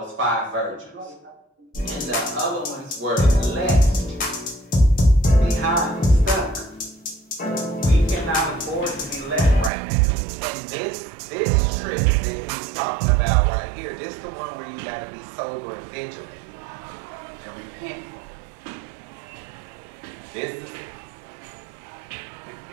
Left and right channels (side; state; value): left; drops out; at 9.7 s